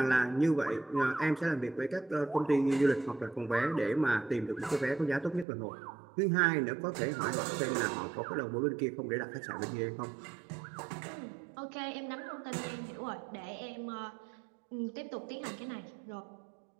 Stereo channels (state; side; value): drops out; left; at 5.5 s